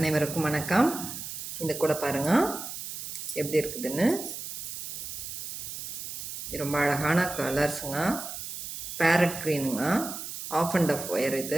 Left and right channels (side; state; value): right; noise; hiss, 8 dB below the sound